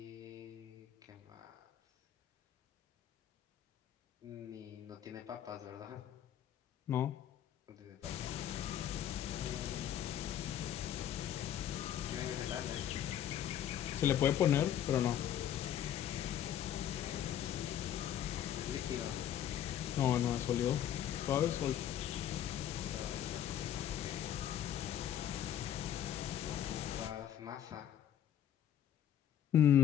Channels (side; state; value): right; quieter; 10.5 dB